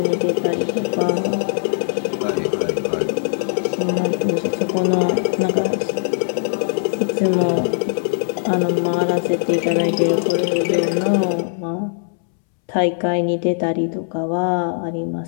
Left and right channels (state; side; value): silent; right; 66 dB below the other